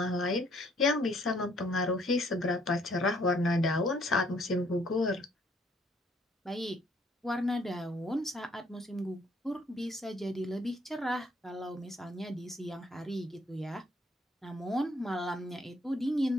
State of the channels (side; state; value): both; normal; correlation 0.65